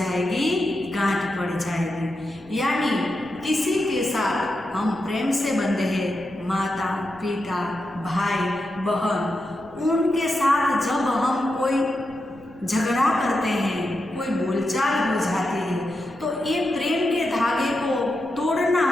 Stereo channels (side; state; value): left; noise; rumble, 26 dB below the sound